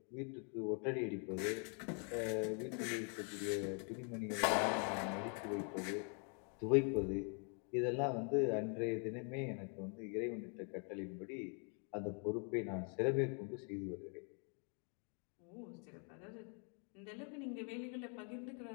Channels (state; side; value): quieter; right; 39.9 dB